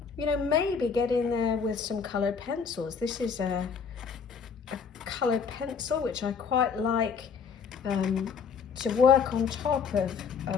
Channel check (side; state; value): right; quieter; 6.0 dB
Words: you know, maybe get in there with some coloured pencils. This is a coloured pencil, which I quite like to work on top of